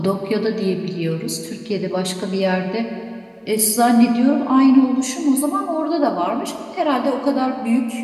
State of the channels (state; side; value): identical; both; correlation 1.00